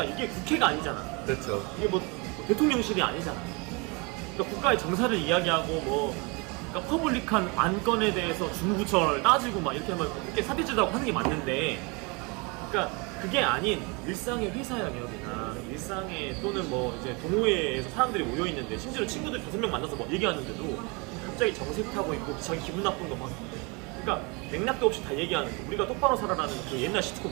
이게 국회가 아니잖아. 그렇죠. 이게 뭐 대통령실이 아니잖아. 그러니까 국가의 정사를 이야기하고 뭐 그러니까 퍼블릭한 안건에 대해서 중부처를 따지고 막 이렇게 하면 이렇게 사대주다고 하는 게 맞는데, 그러니까 그게 아닌 일상의 회사 영역이나 일상의 또는 뭐 이제 동호회에서 사람들이 모여 있는데 심지어 친구들 5명 만나서 뭐 얘기하는데도 갑자기 정색하고 있고 자기 기분 나쁜 거 막, 그러니까 맥락도 없이 다 얘기하는 거. 우리가 똑바로 살아라는 그 옛날 시트콤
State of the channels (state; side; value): quieter; left; 29.6 dB